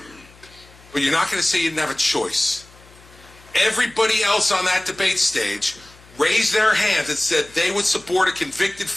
But you're not going to say you didn't have a choice. Everybody else on that debate stage raised their hands and said they would support a convicted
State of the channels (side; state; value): left; noise; hum, 25 dB below the sound